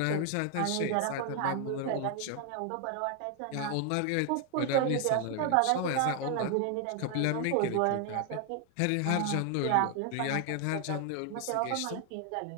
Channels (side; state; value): both; different; correlation 0.00